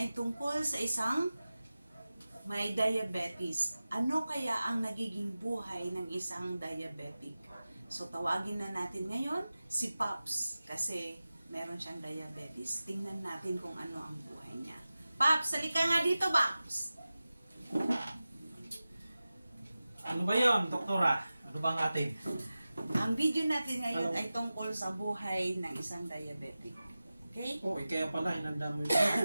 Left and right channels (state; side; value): inverted; both; correlation -0.95